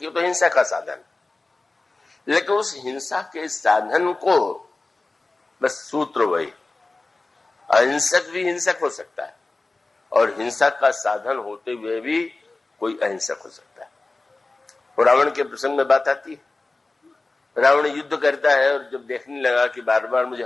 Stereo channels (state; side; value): quieter; right; 3.3 dB